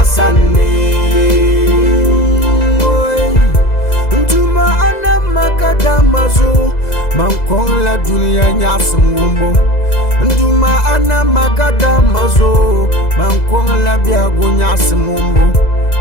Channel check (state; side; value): late; right; 2.0 ms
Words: Makadamazo mankon la dunia nyasum wumbo Nduma ana makadamazo mankon la biago nyasum wumbo